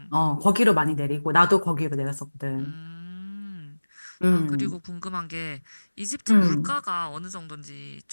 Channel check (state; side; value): inverted; both; correlation -1.00